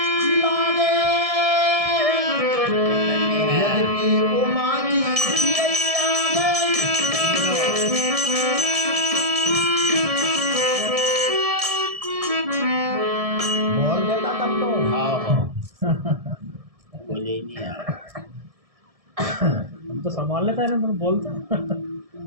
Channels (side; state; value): left; late; 1.7 ms